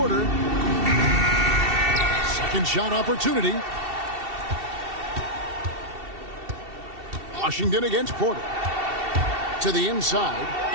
Second shot opportunity. Washington against Porter. To the inside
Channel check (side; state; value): left; late; 2.7 ms